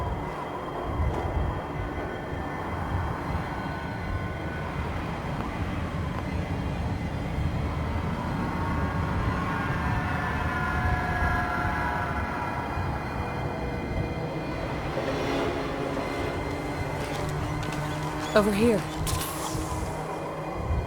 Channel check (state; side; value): identical; both; correlation 1.00